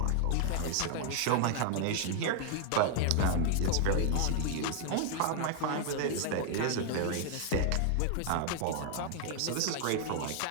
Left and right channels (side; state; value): both; different; correlation 0.00